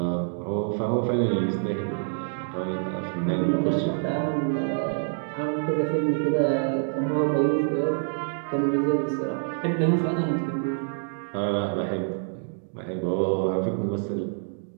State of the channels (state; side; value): silent; left; digital silence